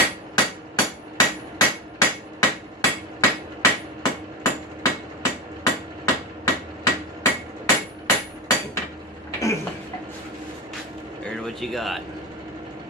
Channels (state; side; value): normal; both; correlation 0.21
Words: There's what you got.